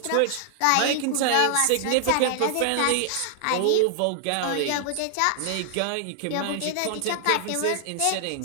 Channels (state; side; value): different; both; correlation -0.01